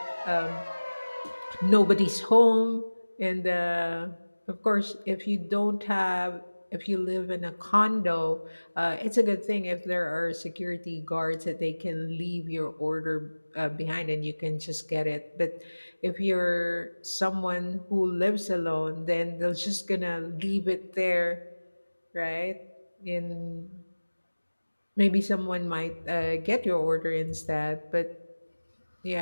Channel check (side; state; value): both; inverted; correlation -1.00